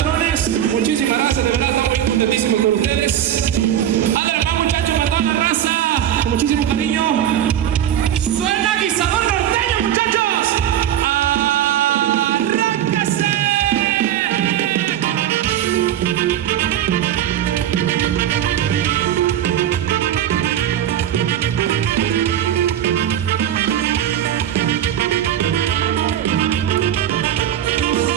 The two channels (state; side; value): quieter; left; 10.9 dB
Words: Muchísimas gracias, de verdad estamos muy contentísimos con ustedes. Adelante, muchachos, para toda la raza. Con muchísimo cariño. Suena guisador norteño, muchachos. ¡Arráncase!